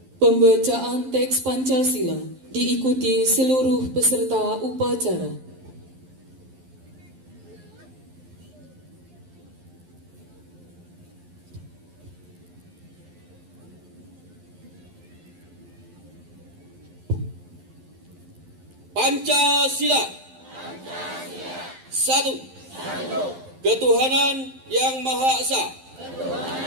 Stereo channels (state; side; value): late; left; 11 ms